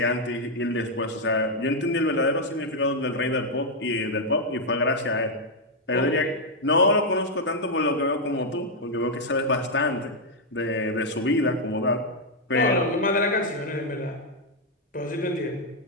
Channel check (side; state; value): both; normal; correlation -0.01